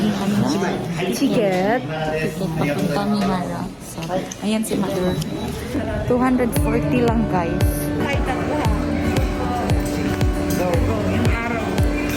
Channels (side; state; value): both; identical; correlation 1.00